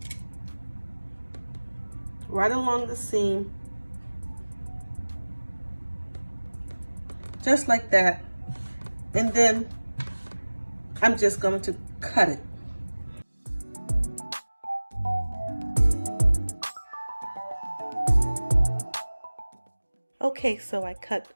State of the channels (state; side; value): inverted; both; correlation -1.00